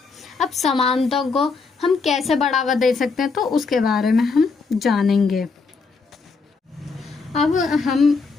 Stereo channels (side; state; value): right; quieter; 4.5 dB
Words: अब समानता को हम कैसे बढ़ावा दे सकते हैं तो उसके बारे में हम जानेंगे। अब